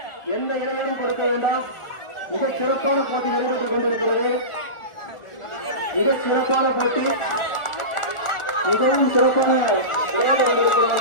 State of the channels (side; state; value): right; late; 1.4 ms